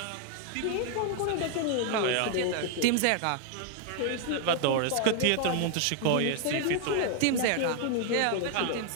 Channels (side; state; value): both; different; correlation 0.00